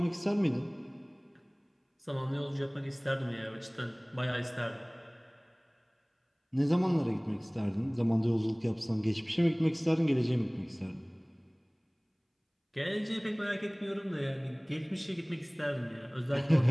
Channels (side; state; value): both; identical; correlation 1.00